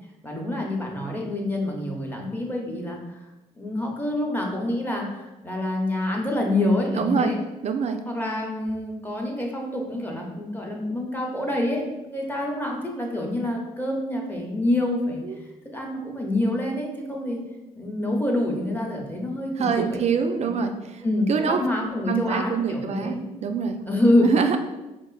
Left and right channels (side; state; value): both; normal; correlation 0.69